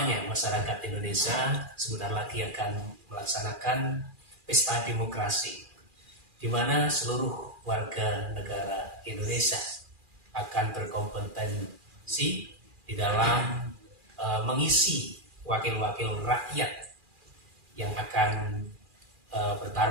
masyarakat Indonesia sebentar lagi akan melaksanakan pesta demokrasi, di mana seluruh warga negara Indonesia akan berkompetensi di dalam mengisi wakil-wakil rakyat yang akan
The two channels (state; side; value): late; left; 2.4 ms